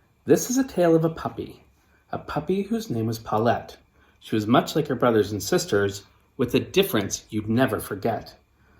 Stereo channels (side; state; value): both; identical; correlation 1.00